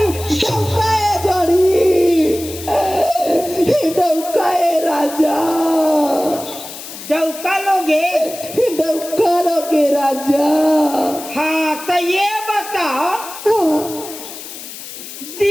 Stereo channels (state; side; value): noise; left; hiss, 12 dB below the sound